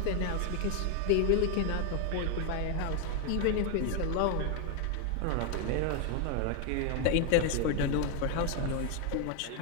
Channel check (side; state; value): both; different; correlation 0.01